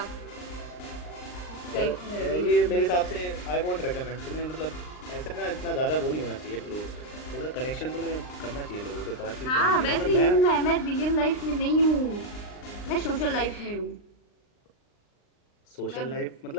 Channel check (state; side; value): late; right; 39 ms